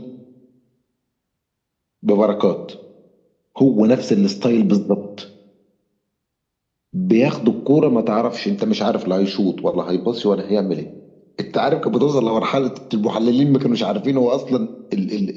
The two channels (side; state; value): both; identical; correlation 1.00